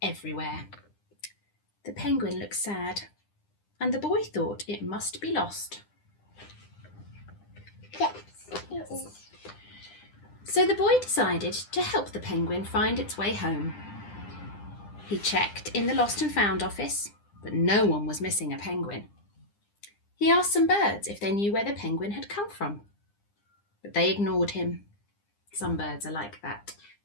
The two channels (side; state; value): right; late; 9.9 ms